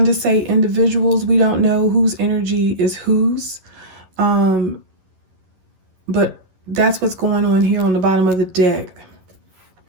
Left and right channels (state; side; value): late; left; 11 ms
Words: to say individuals. We don't know whose energy is whose, but that's what's going on here on the bottom of the deck.